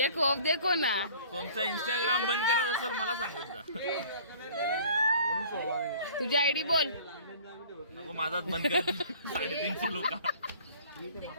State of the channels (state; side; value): inverted; both; correlation -0.49